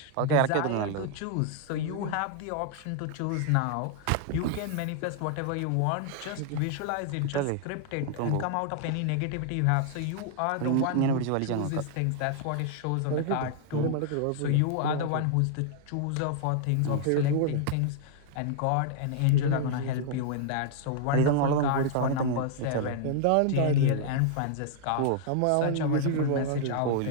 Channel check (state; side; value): different; both; correlation 0.00